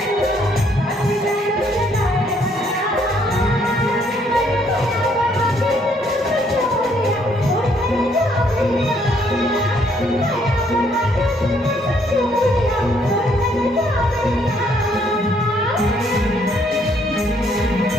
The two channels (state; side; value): normal; both; correlation 0.68